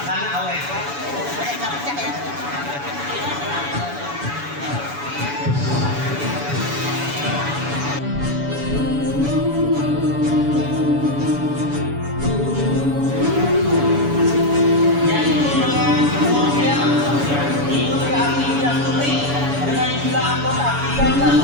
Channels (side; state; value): left; late; 7.0 ms